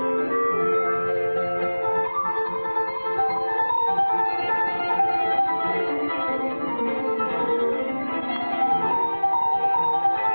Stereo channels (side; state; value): both; inverted; correlation -1.00